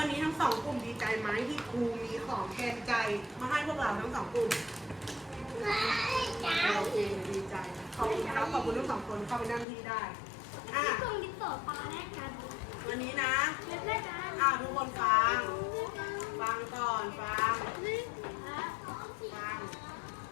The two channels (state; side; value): drops out; right; at 9.7 s